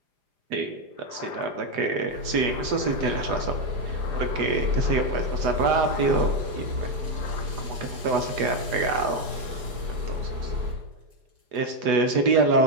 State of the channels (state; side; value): late; left; 4.9 ms